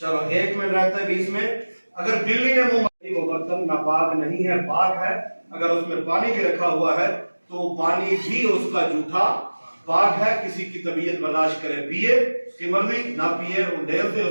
چلو 1 منٹ رہتا ہے 20 میں۔ اگر بلی نے منہ مار دی، وہ برتن ناپاک نہیں ہے، پاک ہے۔ اگر اس میں پانی بھی رکھا ہوا ہے تو پانی بھی اس کا جھوٹا پاک ہے۔ کسی کی طبیعت برداشت کرے پیے، اس کی مرضی، نہ پیے ڈھیل سے،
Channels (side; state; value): both; inverted; correlation -1.00